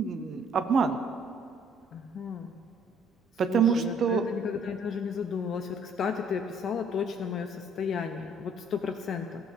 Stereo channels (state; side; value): normal; both; correlation 0.61